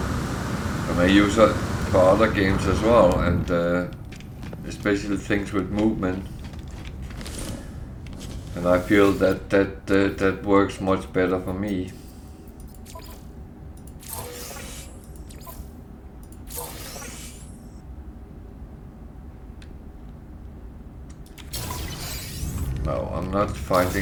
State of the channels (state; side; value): identical; both; correlation 1.00